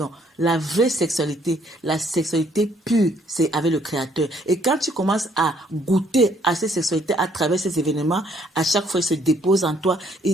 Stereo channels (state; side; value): normal; both; correlation 0.66